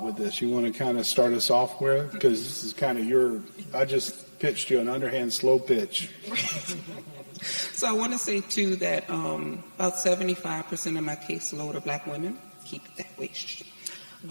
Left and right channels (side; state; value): both; inverted; correlation -1.00